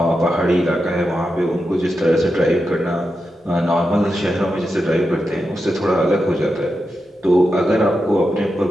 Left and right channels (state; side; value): normal; both; correlation 0.88